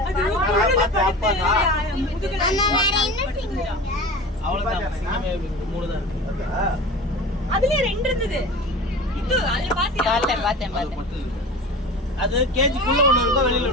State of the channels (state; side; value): normal; both; correlation 0.35